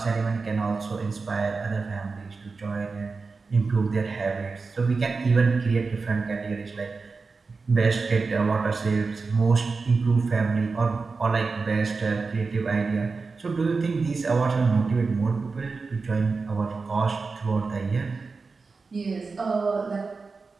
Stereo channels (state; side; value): quieter; left; 4.3 dB